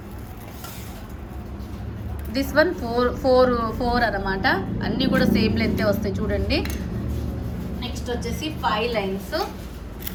దిస్ వన్ 4 అన్నమాట. అన్నీ కూడా సేమ్ లెంతే వస్తాయి చూడండి. నెక్స్ట్ వచ్చేసి 5 లైన్స్.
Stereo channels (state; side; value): identical; both; correlation 1.00